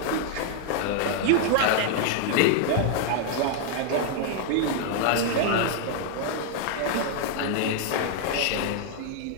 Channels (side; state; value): both; different; correlation 0.00